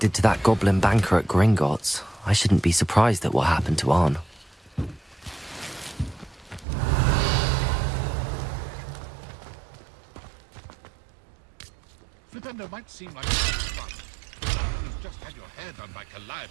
to that goblin banker at Gringotts, I shouldn't be surprised at what happened to Arn. Flipendo might seem like a fun. You've just had your hair done by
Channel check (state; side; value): drops out; left; at 6.7 s